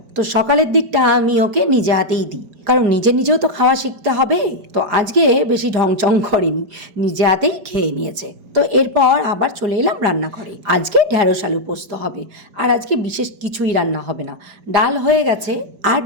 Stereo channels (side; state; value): left; late; 4.8 ms